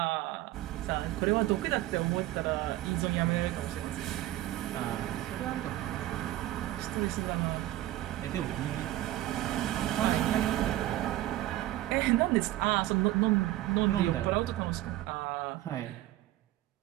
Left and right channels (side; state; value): left; quieter; 15.3 dB